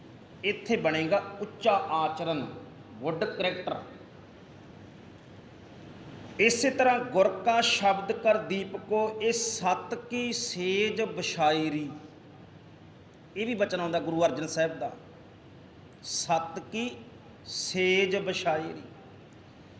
ਇੱਥੇ ਬਣੇਗਾ ਉੱਚਾ ਆਚਰਨ, ਗੁੱਡ ਕਰੈਕਟਰ। ਇਸੇ ਤਰ੍ਹਾਂ ਗੁਰ ਕਾ ਸ਼ਬਦ ਕਰ ਦੀਪਕੋ, ਇਹ ਸਤ ਕੀ ਸੇਜ ਬਸ਼ਾਇਰੀ, ਇਹ ਵੀ ਬਚਨ ਆਉਂਦਾ ਗੁਰੂ ਅਰਜਨ ਸਾਹਿਬ ਦਾ, ਸਤ ਕੀ ਸੇਜ ਬਸ਼ਾਇਰੀ।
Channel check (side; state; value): both; identical; correlation 1.00